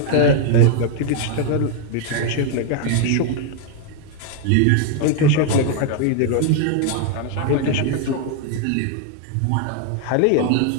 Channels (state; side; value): different; both; correlation 0.00